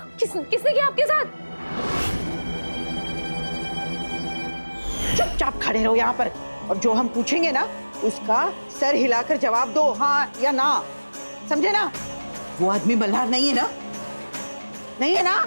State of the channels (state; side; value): inverted; both; correlation -1.00